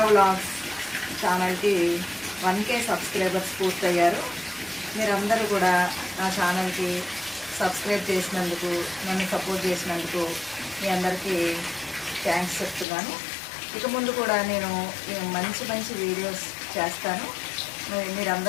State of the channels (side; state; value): right; drops out; at 12.9 s